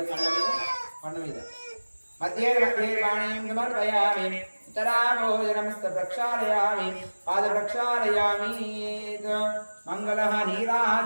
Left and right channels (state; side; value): inverted; both; correlation -1.00